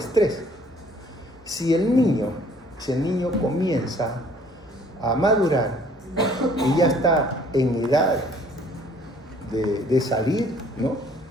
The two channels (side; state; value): both; normal; correlation 0.57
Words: Si el niño comienza a madurar y ya está en edad de salir, ¿no?